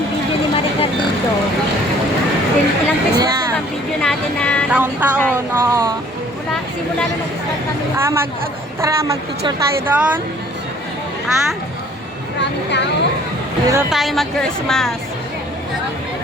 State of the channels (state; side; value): normal; both; correlation 0.55